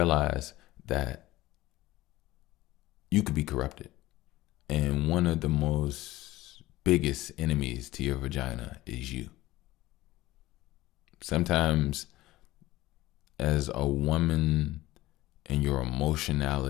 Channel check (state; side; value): quieter; right; 17.5 dB